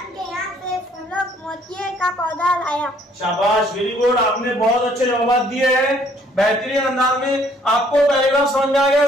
के यहाँ से फूलों मोतिये का पौधा लाया। शाबाश, वेरी गुड, आपने बहुत अच्छे जवाब दिए हैं बेहतरीन अंदाज में। आपको पैराग्राफ समझ में आ गया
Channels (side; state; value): both; normal; correlation 0.62